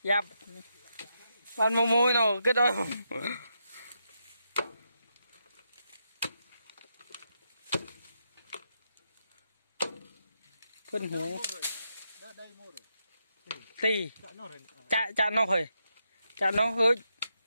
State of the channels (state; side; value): inverted; both; correlation -0.83